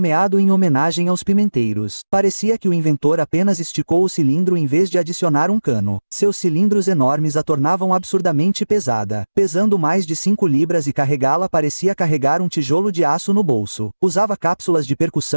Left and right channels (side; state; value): both; inverted; correlation -1.00